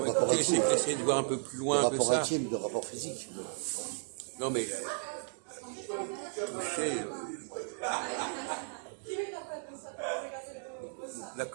Ouais, rapport essayez, intime. essayez de voir un peu plus Le loin que rapport ça. intime, le rapport physique. Non, mais toucher.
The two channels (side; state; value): left; silent; digital silence